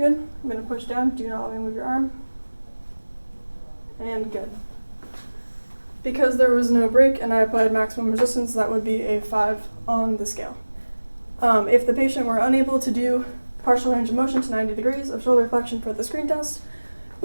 I'm going to push down. Do not let me move your arm. And good. Because there was no break and I applied maximum resistance, that would be a 5 on the scale. If the patient were unable to do partial range of motion to 90 degrees of shoulder flexion for the screen test,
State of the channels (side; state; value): both; inverted; correlation -1.00